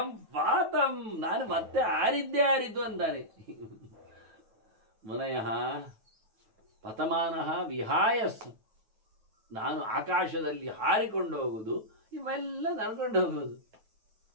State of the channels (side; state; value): left; late; 9.2 ms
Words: ವಾತಂ, ನಾನು ಮತ್ತೆ ಆರಿದ್ದು ಅಂತಾನೆ. ಮುನಯಃ ಪತಮಾನಃ ವಿಹಾಯಸ್, ನಾನು ಆಕಾಶದಲ್ಲಿ ಹಾರಿಕೊಂಡು ಹೋಗುದು, ಇವೆಲ್ಲ ನಡ್ಕೊಂಡು ಹೋಗೋದು.